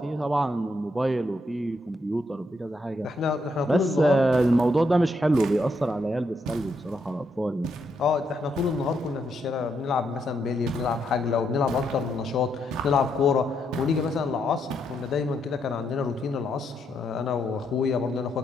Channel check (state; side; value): normal; both; correlation 0.78